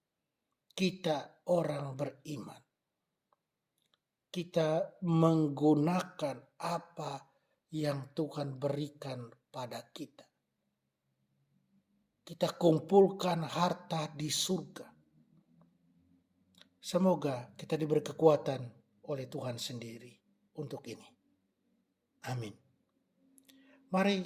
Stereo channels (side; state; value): both; identical; correlation 1.00